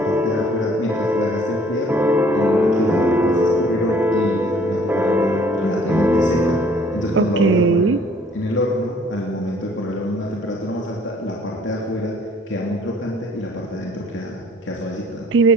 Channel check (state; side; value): normal; both; correlation 0.57